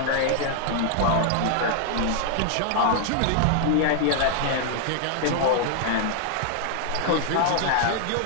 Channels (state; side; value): different; both; correlation 0.00